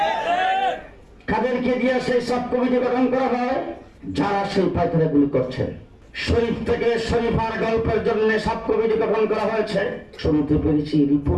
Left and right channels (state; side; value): identical; both; correlation 1.00